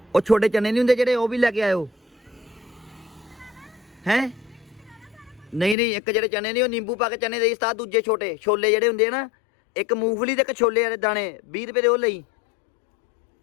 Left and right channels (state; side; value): drops out; right; at 5.8 s